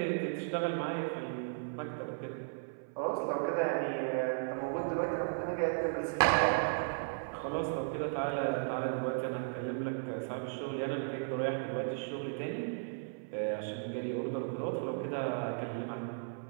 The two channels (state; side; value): silent; left; 54 dB below the other